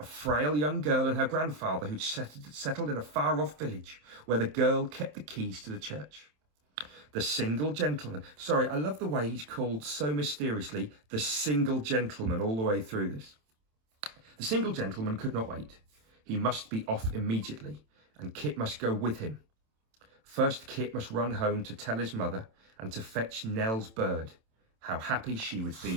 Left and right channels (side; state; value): left; late; 27 ms